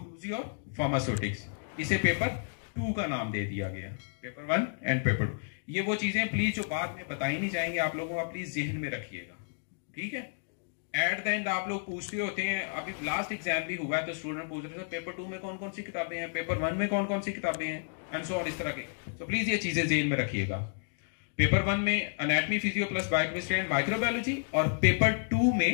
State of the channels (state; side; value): silent; right; digital silence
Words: और फार्मास्यूटिक्स, इसे पेपर 2 का नाम दे दिया गया, पेपर 1 एंड पेपर 2। ये वो चीजें प्लीज जो बाद में बताई नहीं जाएंगे, आप लोगों का प्लीज जहन में रखिएगा, ठीक है। एट द एंड आप लोग पूछते होते हैं, अभी लास्ट एग्जाम भी हुआ है तो स्टूडेंट पूछ रहे थे पेपर 2 में कौन कौन सी किताबें हैं, पेपर 1 में कौन कौन सी किताबें हैं, एंड सो ऑन, इस तरह के। तो प्लीज ये चीजें जहन में रखिएगा। पेपर 1 में anatomy, physio plus biochemistry and microbiology, और पेपर 2